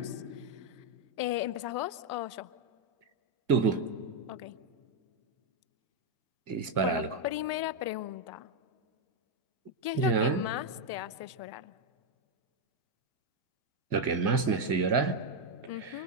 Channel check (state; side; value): late; left; 2.0 ms